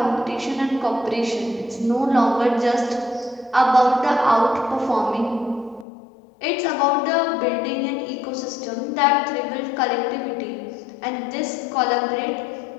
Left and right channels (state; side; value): drops out; right; at 5.9 s